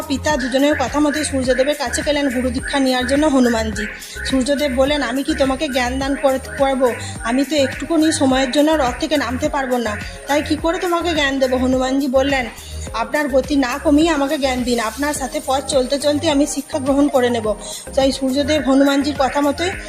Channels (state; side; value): identical; both; correlation 1.00